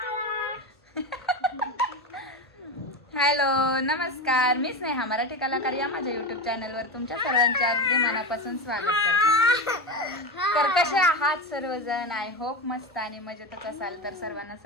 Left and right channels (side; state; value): both; normal; correlation 0.19